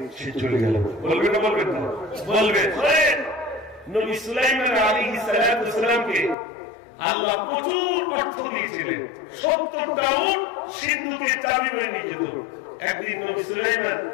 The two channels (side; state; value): right; drops out; at 6.4 s